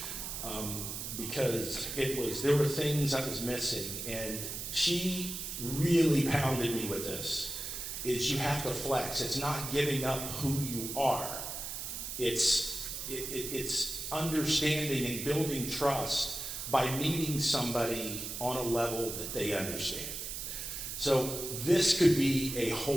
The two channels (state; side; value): noise; right; hiss, 6 dB below the sound